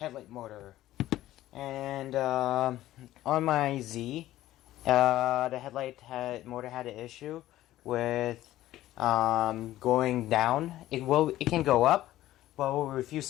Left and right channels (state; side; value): quieter; right; 14.7 dB